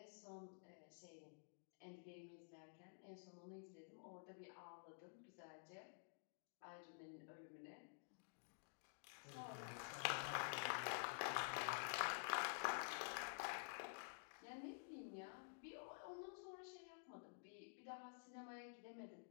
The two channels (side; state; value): right; silent; digital silence